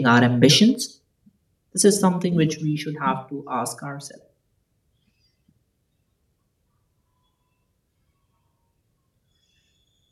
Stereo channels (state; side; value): identical; both; correlation 1.00